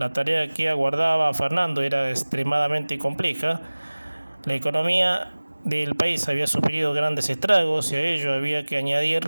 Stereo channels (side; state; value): both; inverted; correlation -1.00